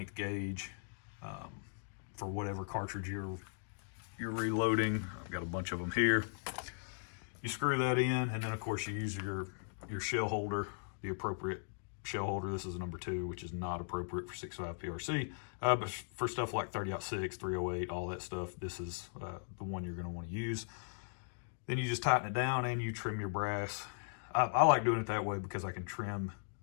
gauge for whatever cartridge you're reloading. I've got a bunch of them here. You screw that in, and then of course you use your shell holder, the appropriate shell holder. This is a number 2, which is not appropriate for 6.5 PRC, but for stuff like 30-06, 308, all that stuff, this is the one you're going to want to use. Then you just tighten it down and you trim your brass. I like doing it that way because I can trim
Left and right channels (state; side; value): silent; right; digital silence